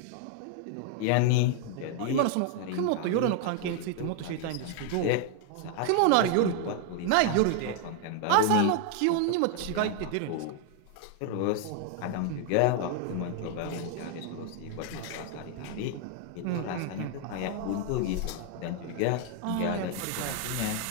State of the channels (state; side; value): different; both; correlation 0.00